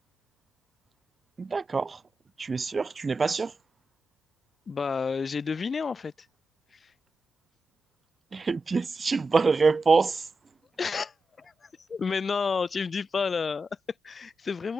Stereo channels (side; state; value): both; normal; correlation 0.90